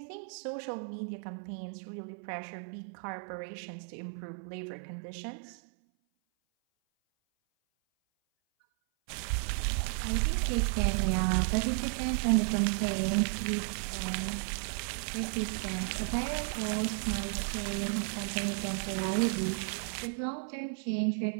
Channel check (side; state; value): left; silent; 55 dB below the other